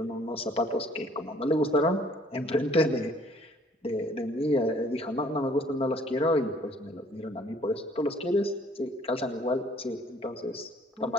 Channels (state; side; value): normal; both; correlation 0.59